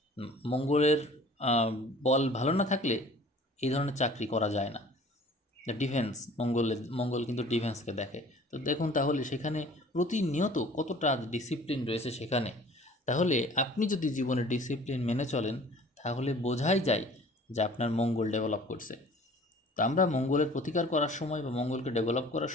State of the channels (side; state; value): both; normal; correlation 0.49